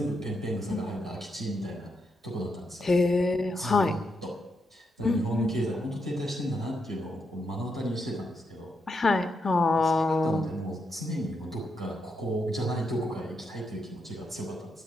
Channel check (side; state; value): both; normal; correlation 0.82